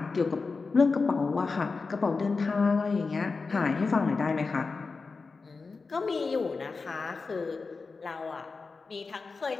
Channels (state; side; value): quieter; right; 4.3 dB